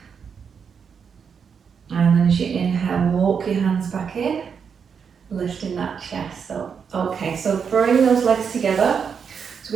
And then as you inhale, walk your hands back in, lifting that chest up. Okay, so bring those legs together. So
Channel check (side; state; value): left; quieter; 6.6 dB